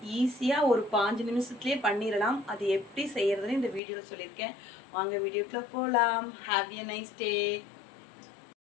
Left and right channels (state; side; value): drops out; right; at 3.8 s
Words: ஈஸியாக ஒரு 5 நிமிஷத்துலேயே பண்ணிடலாம். அது எப்படி செய்யறதுன்னு இந்த வீடியோவில் சொல்லியிருக்கேன். வாங்க வீடியோக்குள்ள போகலாம். Have a nice day.